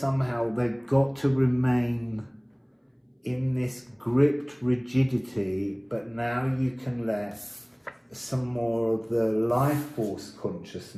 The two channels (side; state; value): both; identical; correlation 1.00